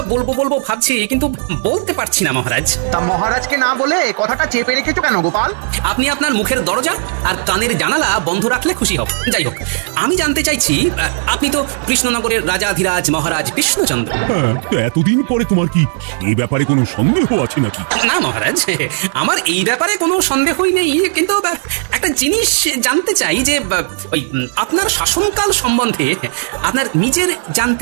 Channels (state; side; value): silent; left; 66 dB below the other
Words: বলবো বলবো ভাবছি, কিন্তু বলতে পারছি না মহারাজ। তা মহারাজকে না বলে কথাটা চেপে রেখেছো কেন গোপাল? আপনি আপনার মুখের দরজা আর কানের জানালা বন্ধ রাখলে খুশি হব। যাই হোক, আমি জানতে চাইছি, আপনি তো কৃষ্ণনগরের রাজাধিরাজ মহারাজ কৃষ্ণচন্দ্র। এতদিন পরে তোমার কি এই ব্যাপারে কোনো সন্দেহ আছে নাকি? না মহারাজ, আমার এই ব্যাপারে কোনো সন্দেহই নেই, কিন্তু একটা জিনিস জানতে চাই যে ওই আপনার শাসনকাল সম্বন্ধে আপনার নিজের